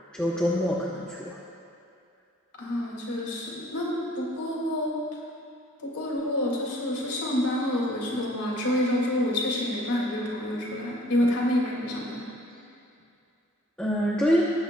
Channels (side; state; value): both; normal; correlation 0.58